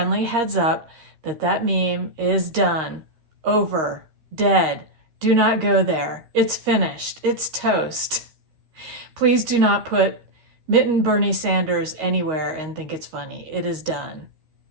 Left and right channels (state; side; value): late; left; 13 ms